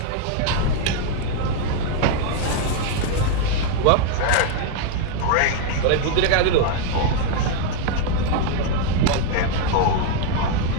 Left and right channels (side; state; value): both; different; correlation 0.01